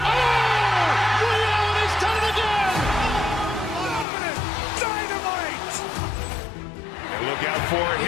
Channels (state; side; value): drops out; right; at 4.0 s